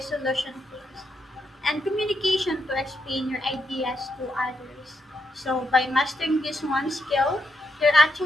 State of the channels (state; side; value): normal; both; correlation 0.80